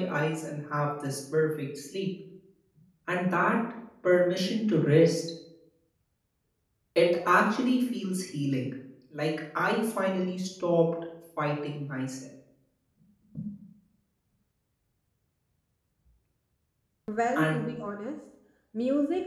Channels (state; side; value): identical; both; correlation 1.00